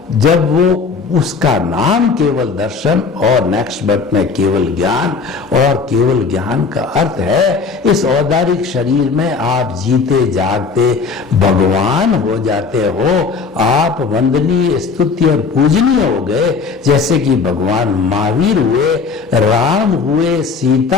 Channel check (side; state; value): right; quieter; 4.9 dB